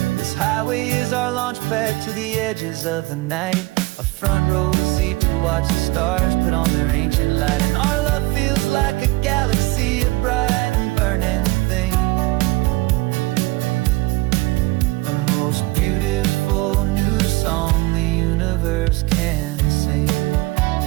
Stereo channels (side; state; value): left; quieter; 22.1 dB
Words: This highway is our launch pad to the edges of the night, a front row seat to watch the stars put on their ancient light. And our love feels like a galaxy, a bright and burning thing. The most beautiful new song the universe can sing.